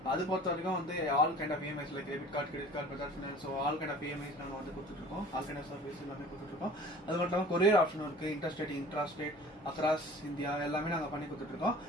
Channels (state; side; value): normal; both; correlation 0.45